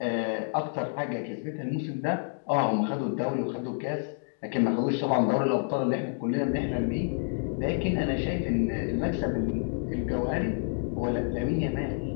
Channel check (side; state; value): right; silent; digital silence